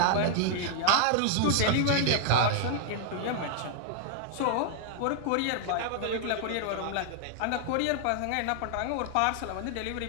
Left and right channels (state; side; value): different; both; correlation 0.00